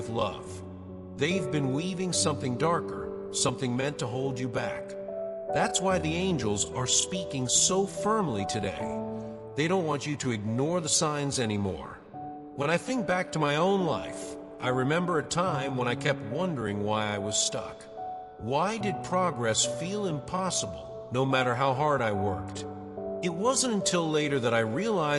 love. They've been weaving something darker, something meant to hold you back. That's why the angels are speaking so firmly today. They don't want you to ignore the signs anymore. When I think back to my own life, I remember a time when I kept wondering why I was stuck. Why did progress feel impossible, no matter how hard I worked? It wasn't until later that I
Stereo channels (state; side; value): identical; both; correlation 1.00